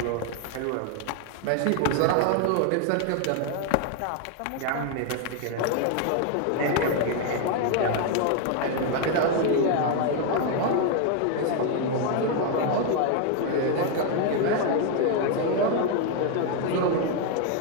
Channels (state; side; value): different; both; correlation 0.01